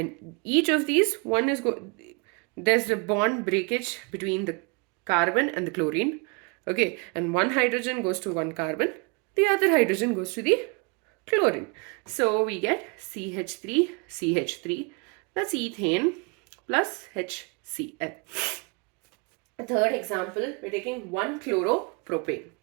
each of these, one is there's a bond breakage between the carbon and the chlorine. Okay, and one hydrogen goes to one carbon, the other hydrogen goes to the chlorine. So we get CH3, CH3, that's ethane plus HCl. A third example, we're taking 1-chloropropane.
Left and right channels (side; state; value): left; quieter; 31.8 dB